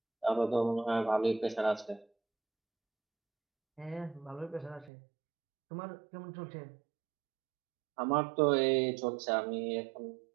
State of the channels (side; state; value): left; drops out; at 4.9 s